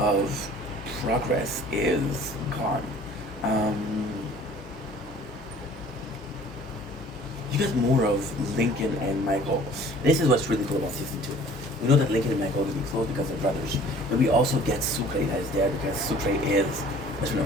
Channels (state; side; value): normal; both; correlation 0.50